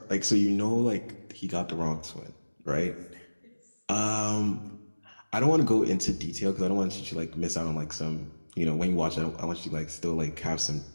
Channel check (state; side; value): inverted; both; correlation -1.00